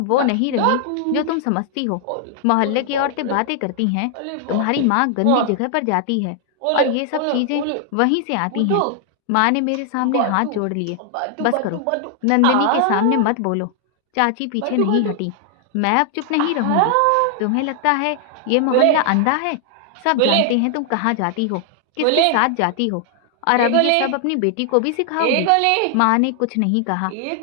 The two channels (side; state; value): both; different; correlation 0.00